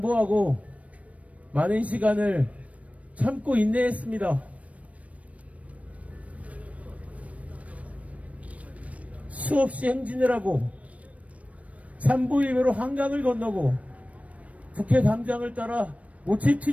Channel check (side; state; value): left; late; 0.066 ms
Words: 많은 시간을 참고 인내했습니다. 수없이 행진을 하고 삼보일배로 한강을 건너고 국회 담장을 따라